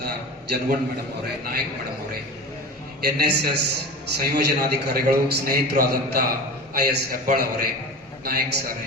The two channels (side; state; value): both; normal; correlation 0.32